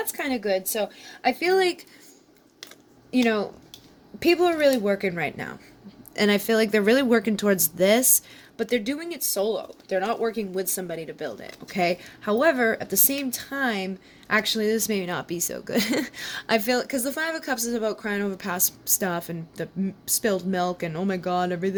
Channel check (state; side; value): identical; both; correlation 1.00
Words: kind of good. So I feel like, you know, people are really working right now. And I feel like they're really working towards this, but they're doing it solo. They're not working with somebody to build it, okay? However, at the same time, actually, this may not be so good. I feel, because the Five of Cups is about crying over past stuff and the spilled milk and, oh my God,